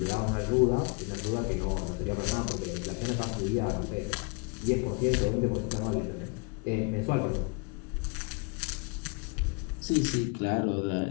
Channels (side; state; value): right; quieter; 31.5 dB